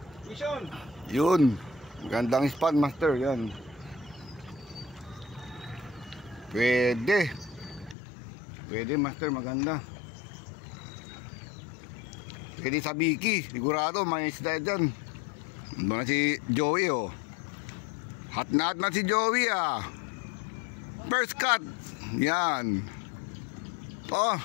Mission. Yun. Magandang spot master yan. Pwede master, maganda. Pwede sa Biki, sigurado may isda dyan. Doon na si Joey oh. Hot na si Joey ah. First cut. Yan. Oh,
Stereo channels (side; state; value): right; drops out; at 8.0 s